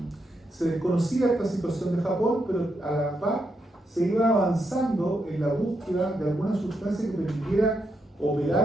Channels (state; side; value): normal; both; correlation 0.82